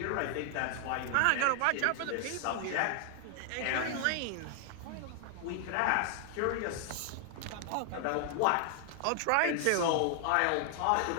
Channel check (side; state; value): both; different; correlation 0.00